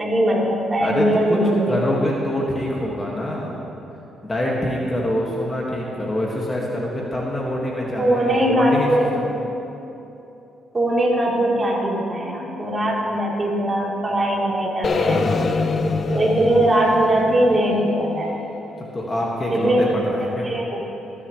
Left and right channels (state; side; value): normal; both; correlation 0.80